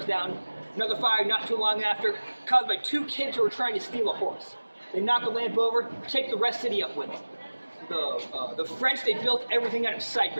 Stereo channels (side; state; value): both; inverted; correlation -1.00